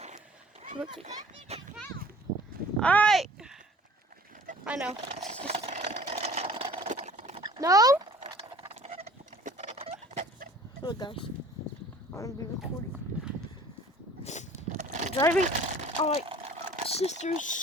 Alright. I know. No? Look, guys. I'm going to be recording. Driving on my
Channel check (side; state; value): both; normal; correlation 0.49